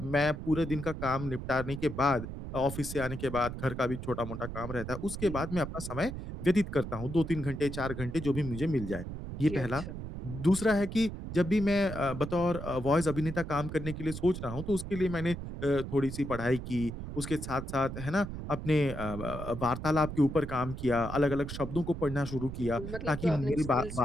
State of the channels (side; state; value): right; noise; rumble, 8 dB below the sound